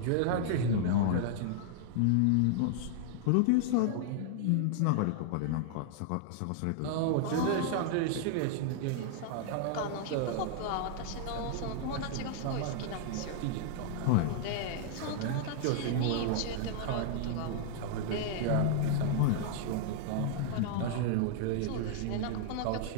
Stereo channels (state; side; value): different; both; correlation -0.01